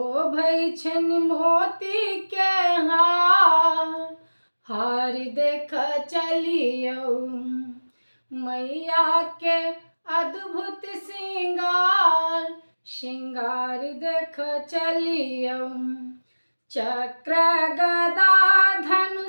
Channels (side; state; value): both; inverted; correlation -1.00